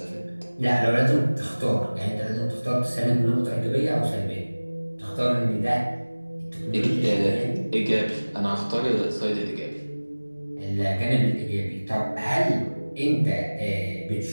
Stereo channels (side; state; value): both; inverted; correlation -1.00